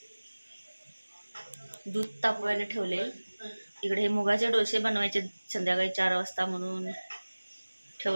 दूध तापवायला ठेवले. इकडे हे मुगाचे डोसे बनवायचे संध्याकाळी 4 वाजता म्हणून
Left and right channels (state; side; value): inverted; both; correlation -1.00